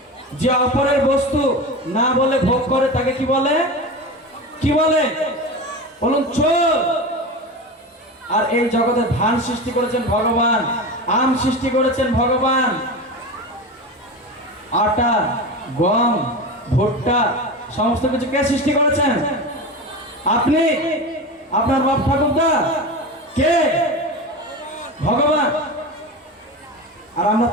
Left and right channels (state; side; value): normal; both; correlation 0.26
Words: যে অপরের বস্তু না বলে ভোগ করে তাকে কি বলে? কি বলে বলুন? চোর। আর এই জগতে ধান সৃষ্টি করেছেন ভগবান, আম সৃষ্টি করেছেন ভগবান, আটা, গম, ভুট্টা, সমস্ত কিছু কে সৃষ্টি করেছেন? আপনি, আপনার বাপ ঠাকুরদা, কে? ভগবান। আর আমরা